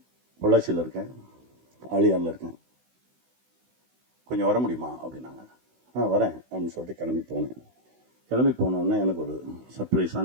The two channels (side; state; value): left; late; 16 ms